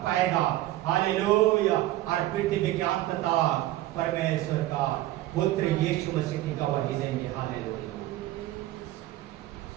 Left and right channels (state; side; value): quieter; left; 15.6 dB